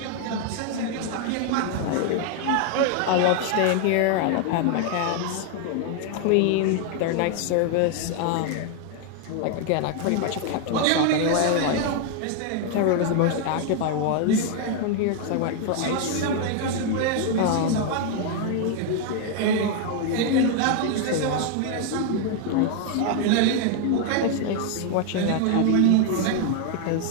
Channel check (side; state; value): both; different; correlation 0.00